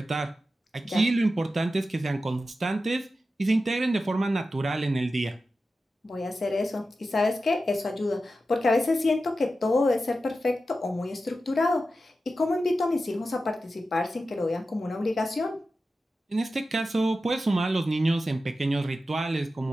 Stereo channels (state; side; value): normal; both; correlation 0.92